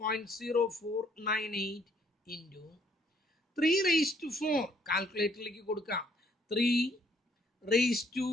ഇൻറ്റു 3 റേസ് ടു 4 കാൽക്കുലേറ്ററിലേക്ക് കൊടുക്കാം. 3 raise to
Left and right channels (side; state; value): both; normal; correlation 0.66